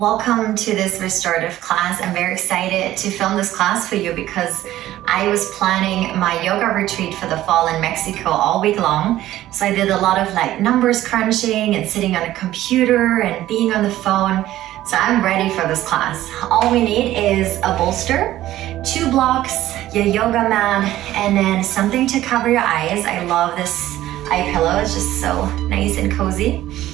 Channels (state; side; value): quieter; left; 14.3 dB